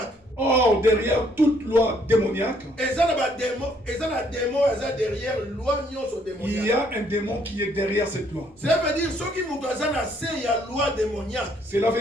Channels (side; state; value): both; normal; correlation 0.67